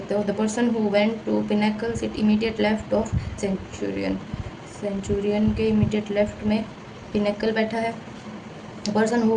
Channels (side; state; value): both; identical; correlation 1.00